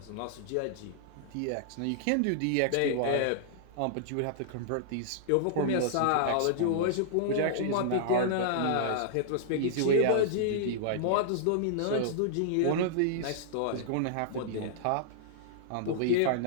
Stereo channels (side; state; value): both; different; correlation -0.01